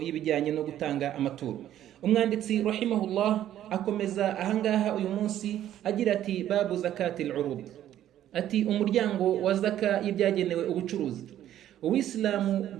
no gutanga amaturo. Umwanditsi rahimahullah akomeza ahangaha uyu munsi agira ati babu zakatil urud, ati umuryango wa zaka y'ibyagenewe ubucuruzi. Uwisilamu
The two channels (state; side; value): quieter; left; 11.8 dB